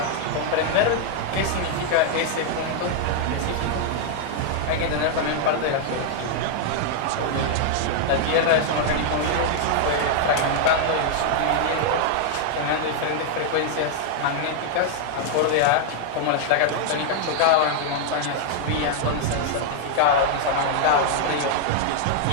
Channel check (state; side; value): different; both; correlation 0.00